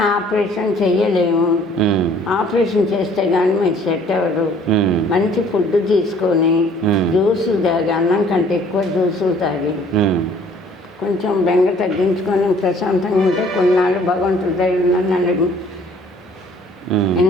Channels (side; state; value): both; normal; correlation 0.56